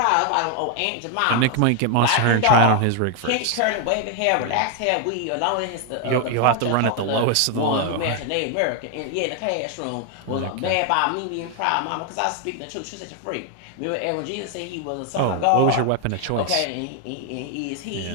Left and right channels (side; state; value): both; different; correlation 0.00